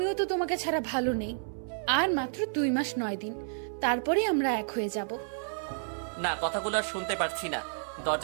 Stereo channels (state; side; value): silent; left; 57 dB below the other